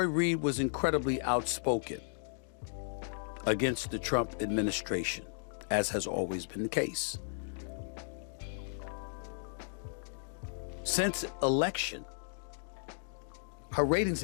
Reid was incredibly outspoken against the Trump administration, as has always been the case. Since election, her ratings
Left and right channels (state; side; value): silent; right; digital silence